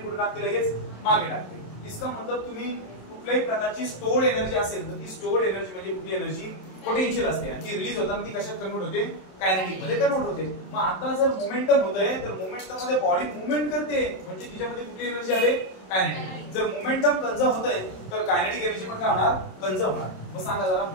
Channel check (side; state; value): right; late; 27 ms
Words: टाकते लगेच मागे टाकते. इसका मतलब तुम्ही कुठल्याही प्रकारची स्टोर्ड एनर्जी असेल तर ती स्टोर्ड एनर्जी म्हणजे कुठली एनर्जी, पोटेन्शियल असते आणि ती रिलीज होताना ती कशात कन्वर्ट होते, कायनेटिक मध्ये कन्वर्ट होते. मग आता जर मोमेंटम होतंय तर मोमेंटम मध्ये बॉडी मूवमेंट करते, म्हणजे तिच्यामध्ये कुठली एनर्जी आले, कायनेटिक. जर मोमेंटम कंझर्व होतंय तर कायनेटिक एनर्जी पण काय होणार, कंझर्व होणार. मग सांगा जरा